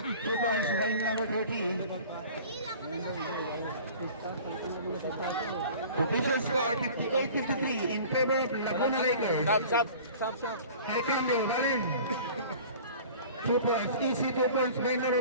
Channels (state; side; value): inverted; both; correlation -0.44